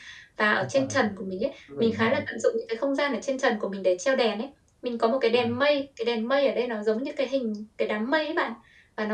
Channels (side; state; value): both; identical; correlation 1.00